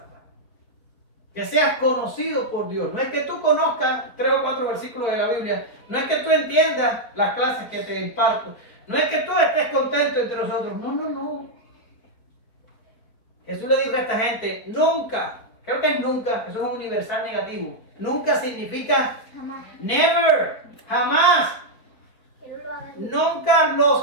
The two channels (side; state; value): right; late; 4.6 ms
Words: Que seas conocido por Dios. No es que tú conozcas 3 o 4 versículos de la Biblia. No es que tú entiendas las clases que te imparto. No es que tú estés contento entre nosotros. No. Jesús le dijo a esta gente, nunca, creo que es nunca, eso es un universal negativo. Nunca significa Jamás. never, jamás. Nunca